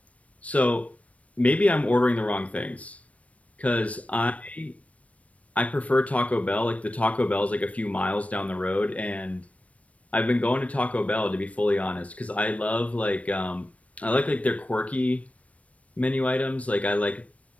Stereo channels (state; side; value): late; right; 0.066 ms